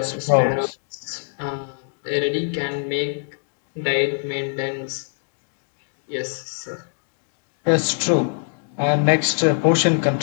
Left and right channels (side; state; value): right; silent; 63 dB below the other